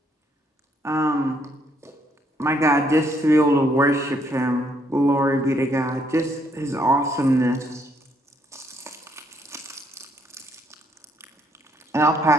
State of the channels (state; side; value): normal; both; correlation 0.70